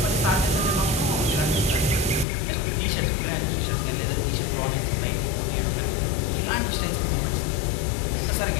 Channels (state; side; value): drops out; right; at 2.2 s